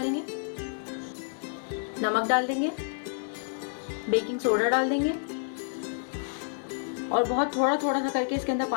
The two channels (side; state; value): right; silent; digital silence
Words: नमक डाल देंगे, बेकिंग सोडा डाल देंगे और बहुत थोड़ा थोड़ा सा करके इसके अंदर